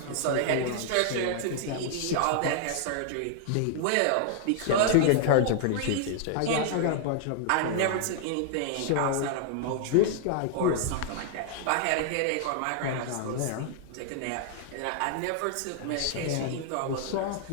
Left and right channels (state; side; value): different; both; correlation 0.00